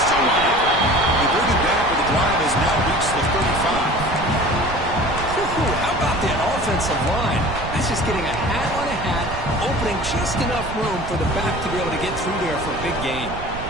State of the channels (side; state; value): right; noise; rumble, 10 dB below the sound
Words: still on it. They bring it back, but the drive has now reached the 35. How about that offensive line? That's just getting a hat on a hat, opening just enough room for the back to be able to get through there for a big gain.